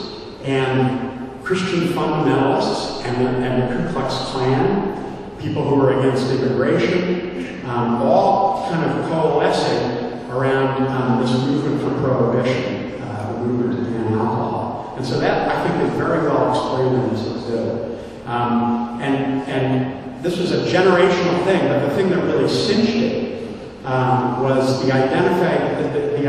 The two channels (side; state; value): both; identical; correlation 1.00